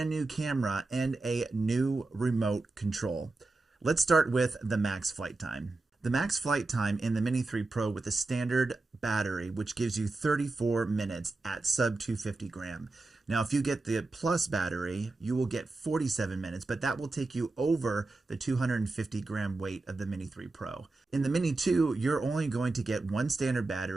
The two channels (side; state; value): left; quieter; 3.3 dB